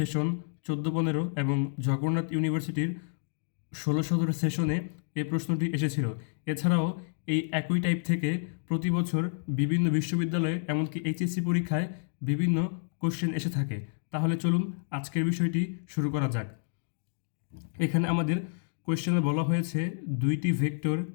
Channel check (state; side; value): silent; right; digital silence